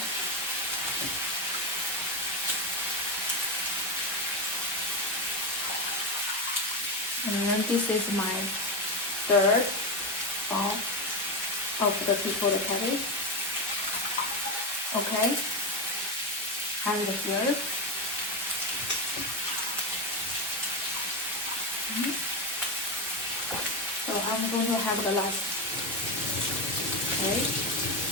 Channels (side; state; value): both; normal; correlation 0.12